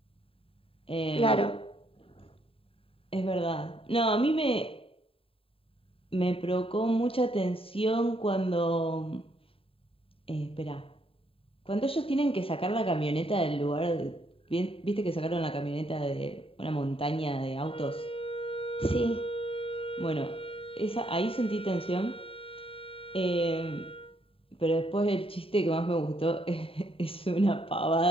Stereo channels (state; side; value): late; right; 0.27 ms